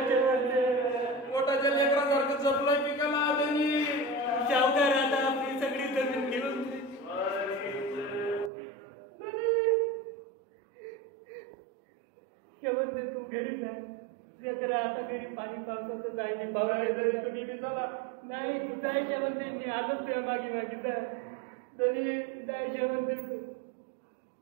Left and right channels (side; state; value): left; drops out; at 8.5 s